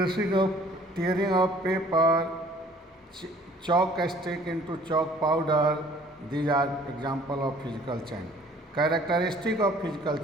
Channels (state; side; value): normal; both; correlation 0.54